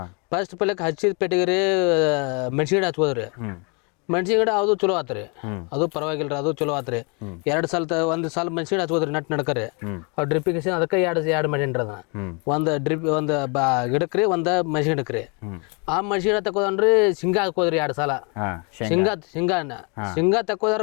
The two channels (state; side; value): quieter; right; 33.8 dB